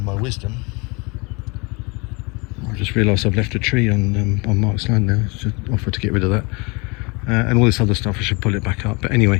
my wisdom, I just realised I've left a tree on Mark's land now. I should offer to get rid of that. And all this other stuff, I should pull it back up. But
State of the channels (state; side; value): quieter; right; 28.5 dB